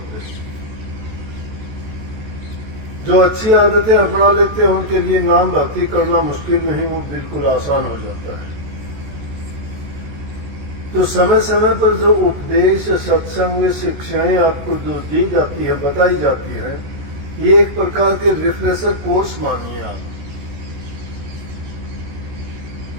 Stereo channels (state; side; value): late; left; 14 ms